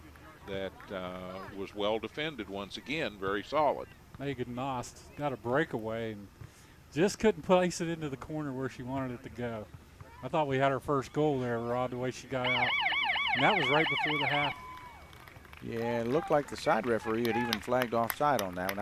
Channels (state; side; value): identical; both; correlation 1.00